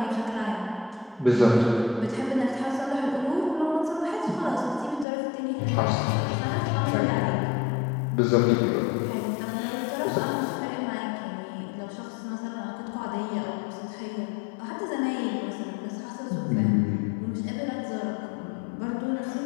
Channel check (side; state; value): right; drops out; at 5.1 s